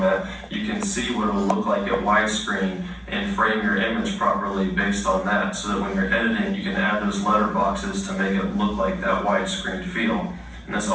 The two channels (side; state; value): both; identical; correlation 1.00